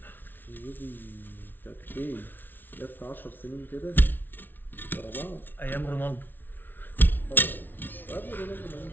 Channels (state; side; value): late; right; 0.092 ms